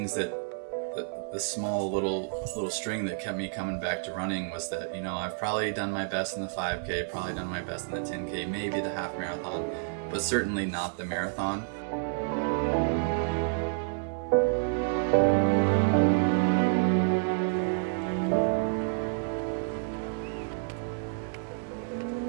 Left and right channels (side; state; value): left; silent; digital silence